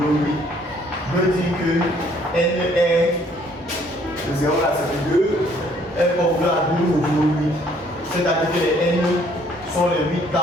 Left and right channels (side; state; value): both; normal; correlation 0.62